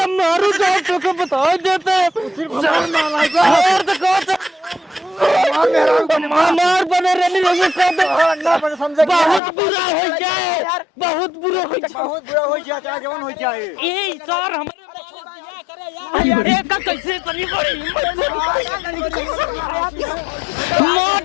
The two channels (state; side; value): drops out; right; at 9.4 s